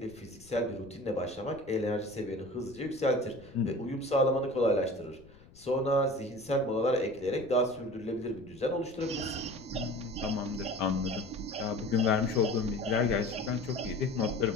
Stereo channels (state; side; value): noise; left; rumble, 23 dB below the sound